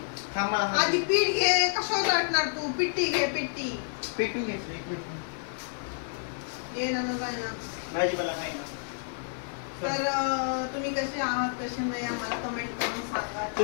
थांब, मला आधी पीठ घे. कशावर लाटणार तू? पिट्टी घे, पिट्टी. पिठून घेतली, एक मिनिट. ये ना जाय ना, भाजीपाला काही ना. तर तुम्ही कसे आहात, कसे नाही, आम्हाला कमेंट करून सांगा.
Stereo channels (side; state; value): right; silent; digital silence